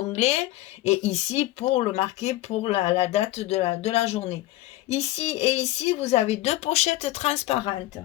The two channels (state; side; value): quieter; right; 16.5 dB